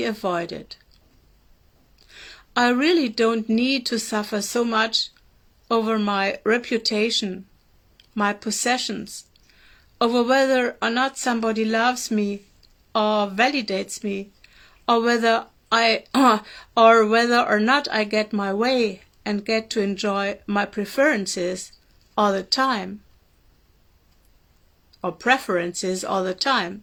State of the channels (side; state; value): both; identical; correlation 1.00